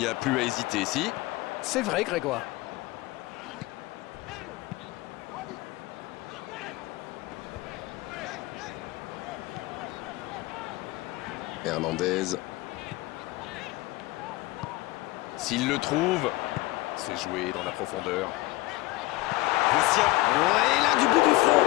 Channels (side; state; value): right; quieter; 19.9 dB